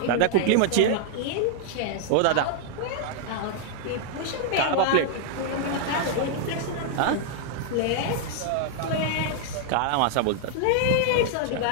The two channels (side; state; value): both; different; correlation -0.01